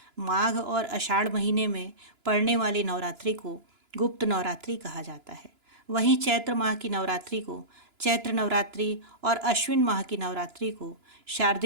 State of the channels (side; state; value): left; late; 2.9 ms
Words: माघ और आषाढ़ महीने में पड़ने वाली नवरात्रि को गुप्त नवरात्रि कहा जाता है। वहीं चैत्र माह की नवरात्रि को चैत्र नवरात्रि और अश्विन माह की नवरात्रि को